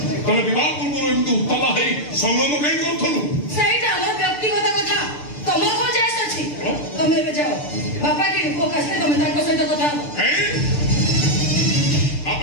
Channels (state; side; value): late; right; 6.8 ms